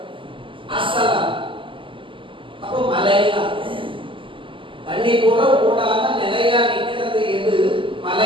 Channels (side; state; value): left; late; 0.25 ms